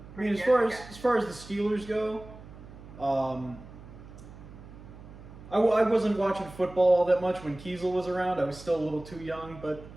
I mean, as far as the Steelers go, I wasn't watching football all that much when Kiesel was around. I was still a little too young, but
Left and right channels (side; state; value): right; noise; hum, 17 dB below the sound